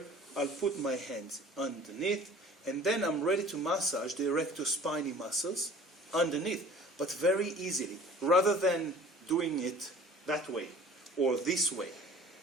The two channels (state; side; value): normal; both; correlation 0.47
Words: I'll put my hands underneath, and then I'm ready to massage the erectospinae muscles underneath, but very easily, rather than doing it that way or this way.